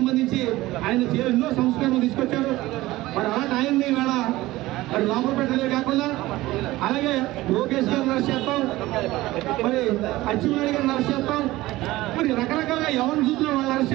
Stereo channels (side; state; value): left; quieter; 17.9 dB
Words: ఆయన ఎన్నో సంస్కరణలు తీసుకొచ్చారు. మరి అలాంటి ఆయన్ని ఇవాళ మరి లోపల పెట్టడమే కాకుండా అలాగే లోకేష్ గారిని అరెస్ట్ చేస్తాం, మరి అచ్చెన్నాయుడు గారిని అరెస్ట్ చేస్తాం, మరి రకరకాలుగా ఎవరిని చూసినా వాళ్ళు అరెస్ట్